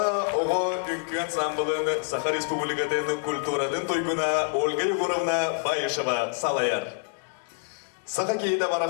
оғы үңкі ансамблын Саха Республикатын культурадын тойгуна Ольга Егоровна Байышева салаяр. Саха кейді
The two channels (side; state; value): right; silent; digital silence